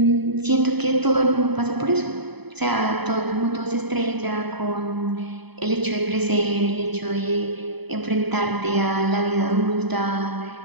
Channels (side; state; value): left; late; 0.99 ms